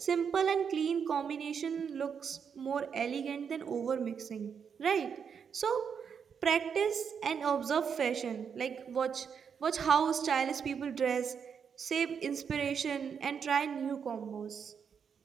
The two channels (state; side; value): quieter; left; 6.9 dB